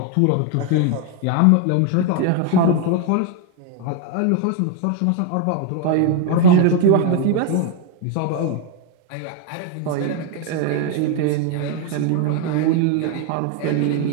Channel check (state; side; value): different; both; correlation 0.01